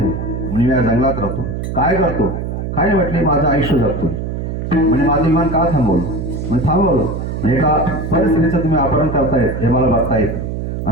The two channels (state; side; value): noise; right; hum, 4 dB below the sound